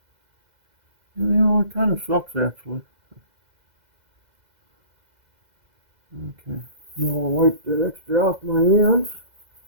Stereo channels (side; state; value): left; late; 2.0 ms